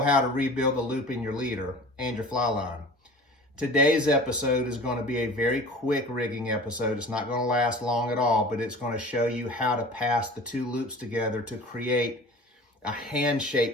to rebuild the loop in your leader and your fly line. Today's episode is going to be a very quick rigging episode. It's not going to last long at all, but it's going to show you how to pass the two loops together to create a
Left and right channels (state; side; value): normal; both; correlation 0.40